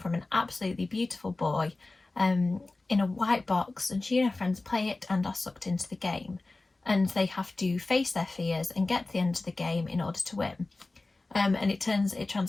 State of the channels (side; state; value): right; quieter; 3.2 dB